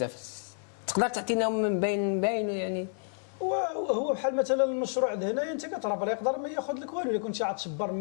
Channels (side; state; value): right; silent; 58 dB below the other